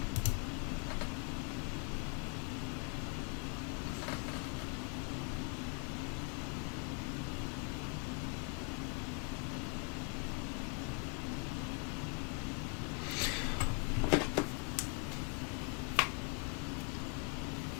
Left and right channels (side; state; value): right; quieter; 39.3 dB